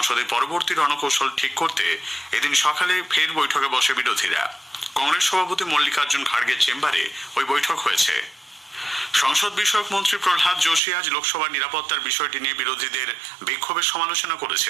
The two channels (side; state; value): left; drops out; at 10.8 s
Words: পরবর্তী রণকৌশল ঠিক করতে এদিন সকালে ফের বৈঠকে বসে বিরোধীরা। কংগ্রেস সভাপতি মল্লিকার্জুন খাড়গের চেম্বারে ওই বৈঠক হয়েছে। সংসদ বিষয়ক মন্ত্রী প্রহ্লাদ যোশী আজ লোকসভার নিরাপত্তার বিষয়টি নিয়ে বিরোধীদের বিক্ষোভের সমালোচনা